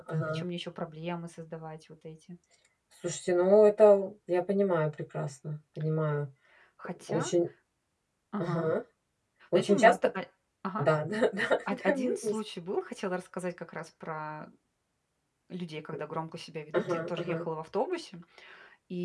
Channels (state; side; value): identical; both; correlation 1.00